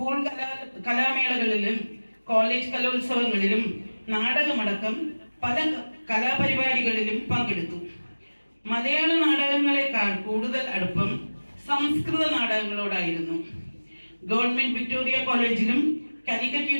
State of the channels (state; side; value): inverted; both; correlation -1.00